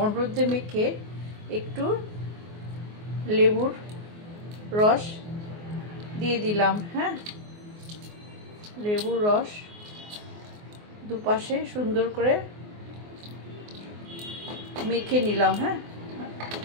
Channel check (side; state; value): left; late; 24 ms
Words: হলুদ দিয়ে মেখে একটু লেবুর রস দিয়ে দিলাম। হ্যাঁ, লেবুর রস দুপাশে সুন্দর করে মেখে নিলাম। হ্যাঁ,